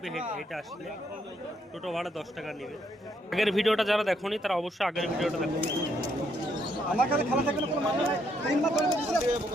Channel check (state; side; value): normal; both; correlation 0.74